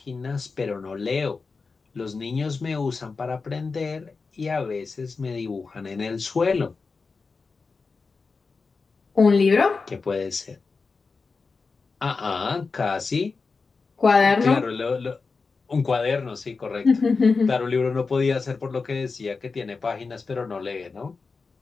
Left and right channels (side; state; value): right; quieter; 4.5 dB